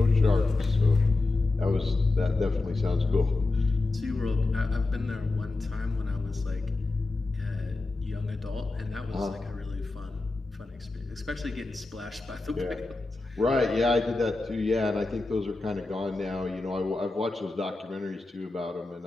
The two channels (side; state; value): right; quieter; 3.3 dB